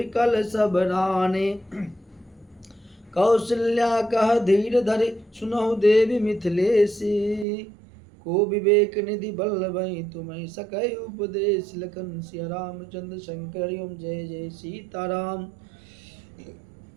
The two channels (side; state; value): left; drops out; at 7.5 s